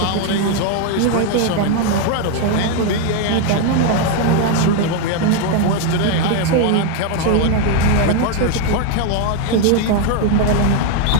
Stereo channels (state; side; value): different; both; correlation 0.01